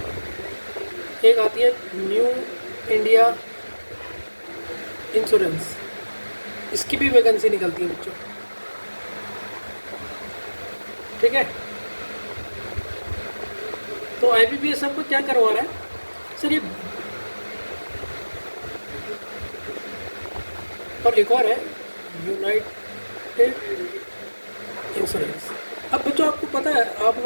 एक आती है न्यू इंडिया इंश्योरेंस, इसकी भी वैकेंसी निकलती है बच्चों। ठीक है, तो IBPS आपको क्या करवा रहा है सर? ये और एक और है यूनाइटेड इंश्योरेंस। अब बच्चों आपको पता है, आप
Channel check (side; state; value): both; inverted; correlation -1.00